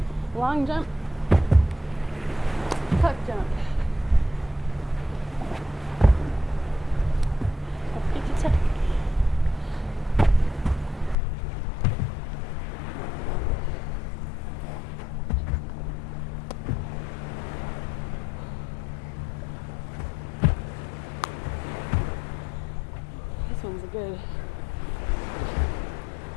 long jump, tuck jump. Get to tuck. good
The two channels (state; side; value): drops out; right; at 11.2 s